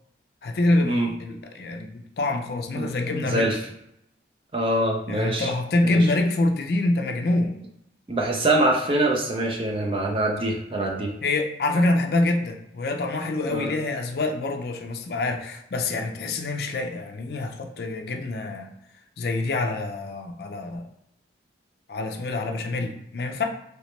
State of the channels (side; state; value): both; normal; correlation 0.56